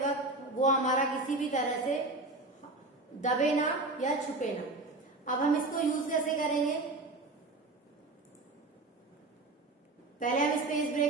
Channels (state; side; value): quieter; left; 3.0 dB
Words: वक्त वो हमारा किसी भी तरह से दबे ना या छुपे ना। अब हम इसको यूज कैसे करेंगे, पहले हम इस पेज